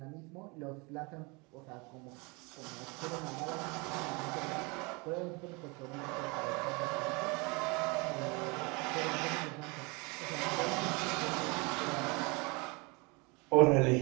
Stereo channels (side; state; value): left; quieter; 28.2 dB